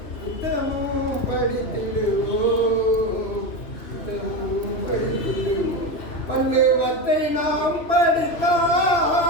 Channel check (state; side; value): late; right; 3.0 ms